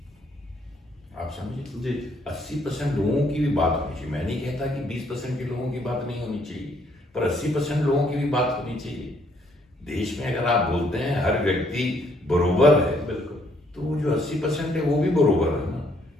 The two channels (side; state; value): both; normal; correlation 0.68